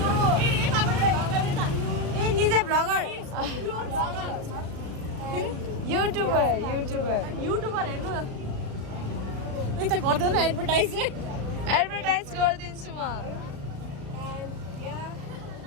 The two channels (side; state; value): left; late; 36 ms